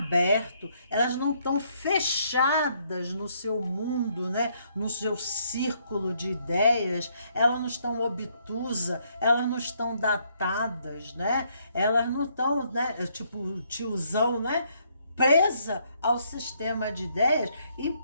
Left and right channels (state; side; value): inverted; both; correlation -0.71